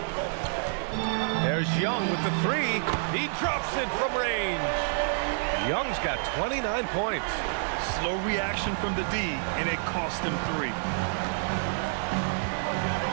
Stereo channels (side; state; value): left; silent; digital silence